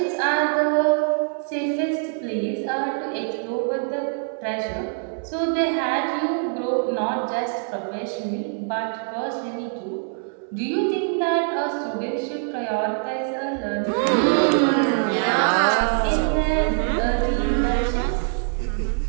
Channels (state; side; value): silent; left; 63 dB below the other